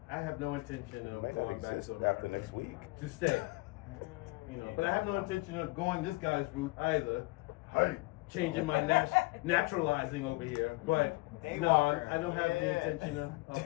I have no intention of might not going back exist to America. after next week. To stay. You know, but I have no intention of going this guy's route either. Hey, changing my naturalizing over here. But no, I don't have the intention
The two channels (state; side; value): quieter; right; 23.9 dB